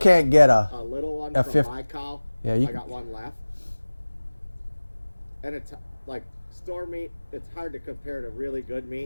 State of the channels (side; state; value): both; inverted; correlation -1.00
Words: get a little one a from fifth- my cow. Yeah, I got one left. And it's like store meat. It's hard to compare to really good